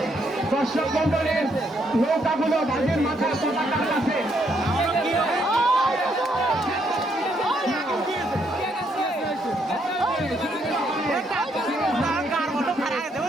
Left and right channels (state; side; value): normal; both; correlation 0.73